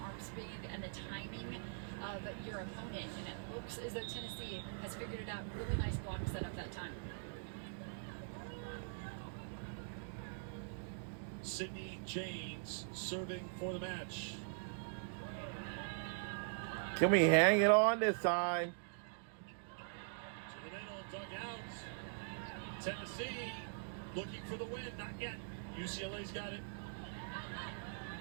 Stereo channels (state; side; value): silent; left; digital silence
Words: speed and the timing of your opponent. And it looks as though Tennessee has figured it out. Really nice block setup that time. Sydney James serving for the match. Can we hang it on this time? To the middle, dug out. Tennessee looking for the win. Not yet. UCLA's got it.